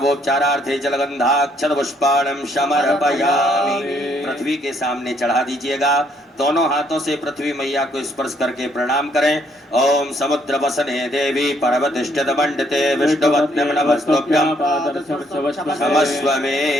जलगन्धाक्षत पुष्पाणं समर्पयामि। पृथ्वी के सामने चढ़ा दीजिएगा। दोनों हाथों से पृथ्वी मैया को स्पर्श करके प्रणाम करें। ओम समुद्र वसने देवी पर्वतिष्ठित मंडिते विष्णुपत्नी नमस्तुभ्यं क्षमस्व मे।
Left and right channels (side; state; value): both; normal; correlation 0.68